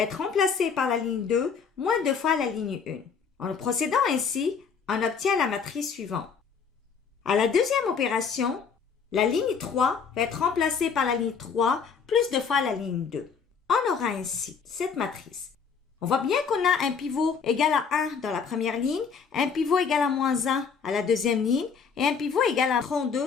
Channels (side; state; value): right; quieter; 6.1 dB